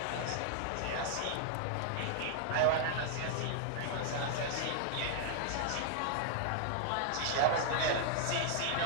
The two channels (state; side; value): different; both; correlation -0.01